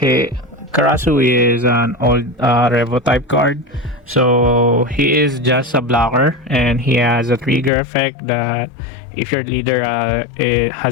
Karasu is an old Revo type card. So he is just a blocker, and he has a trigger effect that if your leader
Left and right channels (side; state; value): right; drops out; at 7.7 s